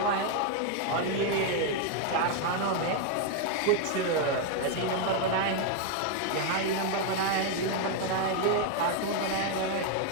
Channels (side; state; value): both; different; correlation 0.01